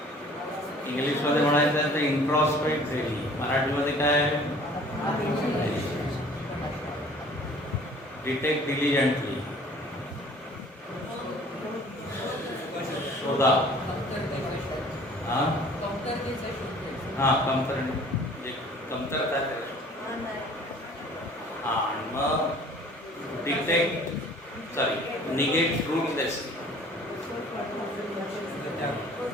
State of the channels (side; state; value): both; normal; correlation 0.51